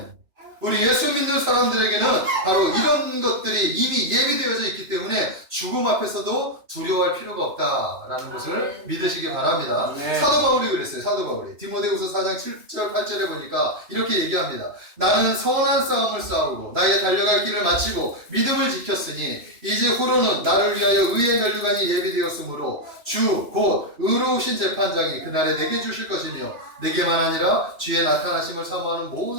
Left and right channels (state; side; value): late; left; 3.0 ms